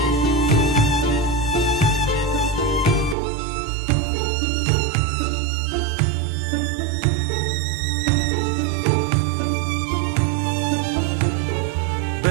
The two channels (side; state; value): left; drops out; at 3.2 s